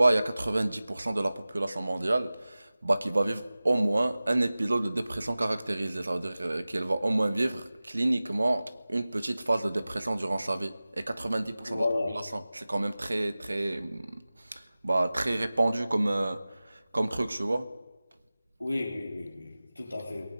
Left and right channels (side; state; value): both; inverted; correlation -0.97